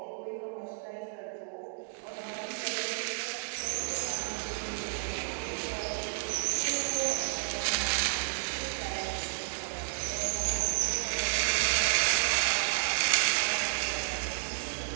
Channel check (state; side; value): silent; left; digital silence